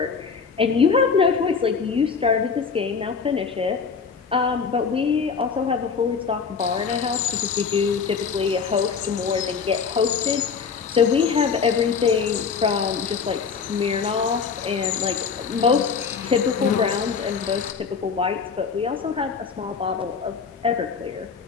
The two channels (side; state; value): right; quieter; 5.8 dB